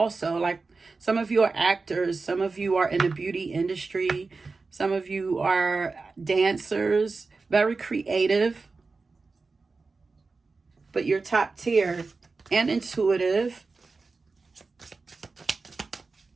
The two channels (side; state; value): left; quieter; 4.1 dB